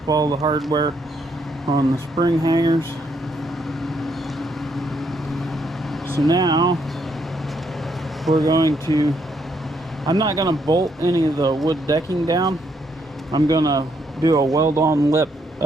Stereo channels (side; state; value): both; normal; correlation 0.74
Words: all the hardware on the spring hangers. So now we're going to, I'm not going to bolt any of the wood decking down. I'm going to do a weld-on lip